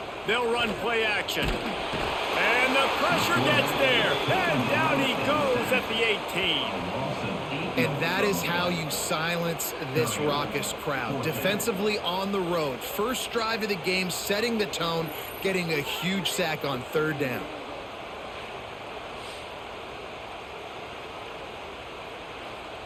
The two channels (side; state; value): both; identical; correlation 1.00